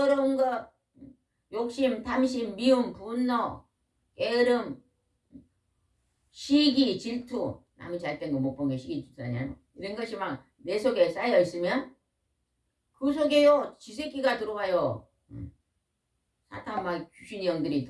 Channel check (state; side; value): identical; both; correlation 1.00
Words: 거 욕심, 탐심, 미움, 분노, 게으름, 시기, 질투 남이 잘된 거 못 본 게 시기 질투냐 이런 것이 막 내 속에 쌓여 있으면 그 속에요 지새끼가 들어와요. 사탄 막 귀신의 영들이